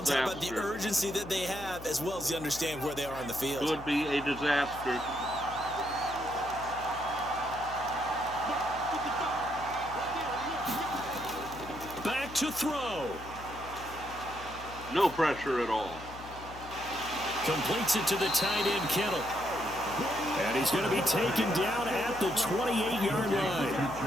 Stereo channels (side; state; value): left; noise; hum, 15 dB below the sound